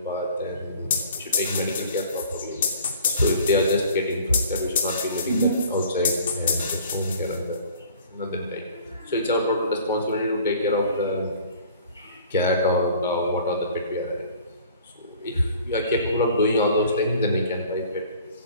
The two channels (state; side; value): inverted; both; correlation -0.49